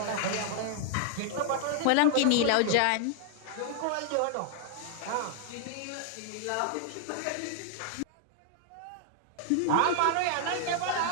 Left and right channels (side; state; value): both; different; correlation 0.00